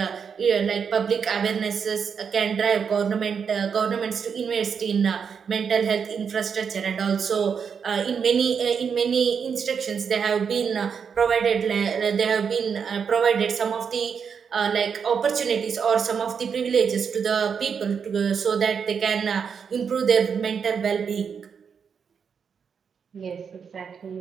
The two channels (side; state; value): left; quieter; 6.6 dB